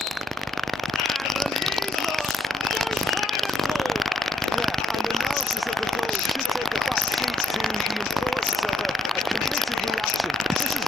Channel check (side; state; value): both; normal; correlation 0.77